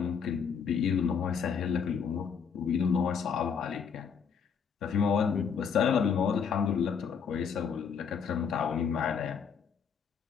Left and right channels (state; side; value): quieter; right; 6.6 dB